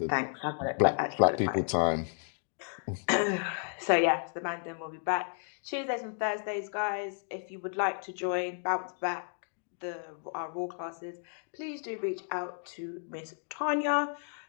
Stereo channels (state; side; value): silent; right; 56 dB below the other